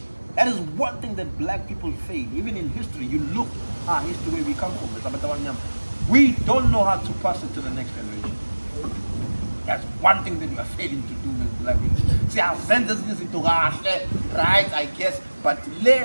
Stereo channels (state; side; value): inverted; both; correlation -1.00